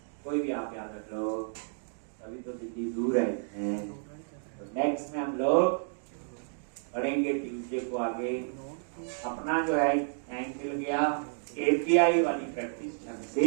कोई भी आप याद रख लो, अभी तो दिल्ली दूर है। तो नेक्स्ट में हम लोग पढ़ेंगे ट्यूसडे को आगे, अपना जो है टाइम मिल गया, API वाली प्रैक्टिस ढंग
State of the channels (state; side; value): silent; left; digital silence